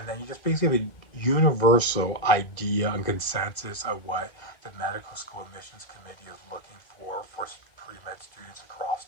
then you just basically have a universal idea and consensus of what the medical school admissions committee is looking for pre-med students across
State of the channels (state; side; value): late; right; 2.0 ms